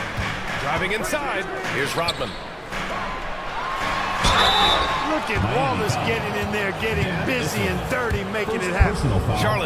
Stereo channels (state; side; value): identical; both; correlation 1.00